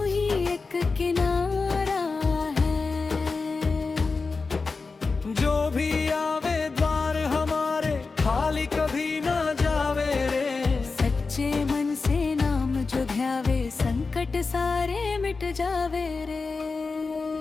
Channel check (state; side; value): quieter; right; 4.2 dB